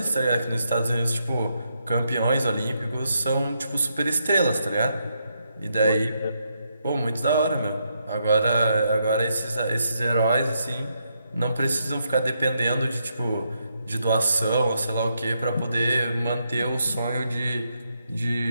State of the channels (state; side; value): inverted; both; correlation -0.79